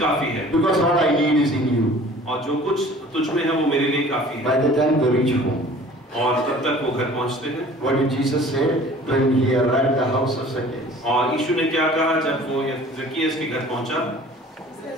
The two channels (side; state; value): both; normal; correlation 0.48